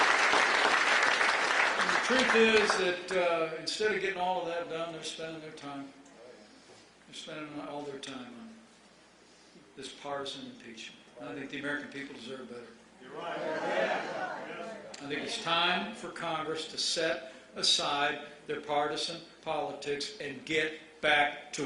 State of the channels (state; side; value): identical; both; correlation 1.00